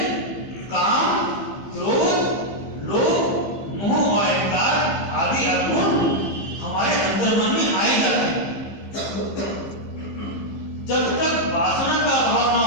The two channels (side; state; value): right; late; 15 ms